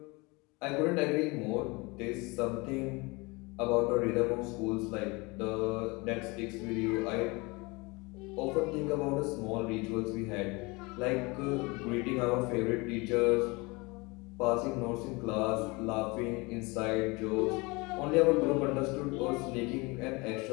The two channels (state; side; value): quieter; right; 26.0 dB